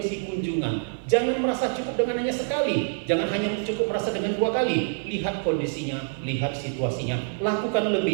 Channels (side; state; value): left; silent; digital silence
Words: kunjungan. Jangan merasa cukup dengan hanya sekali, jangan hanya cukup merasa dengan 2 kali. Lihat kondisinya, lihat situasinya, lakukan